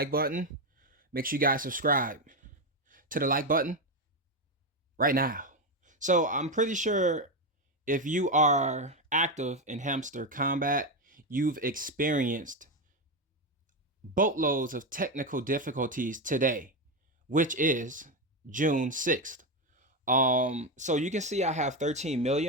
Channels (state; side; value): normal; both; correlation 0.11